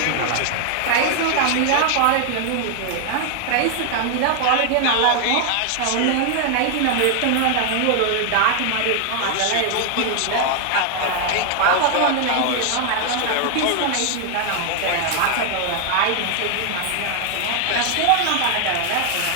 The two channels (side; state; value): both; different; correlation 0.00